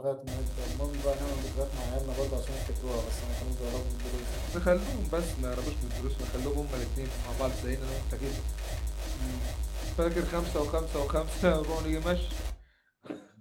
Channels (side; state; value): both; identical; correlation 1.00